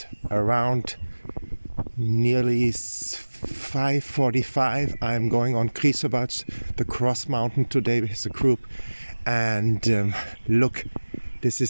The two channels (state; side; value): inverted; both; correlation -1.00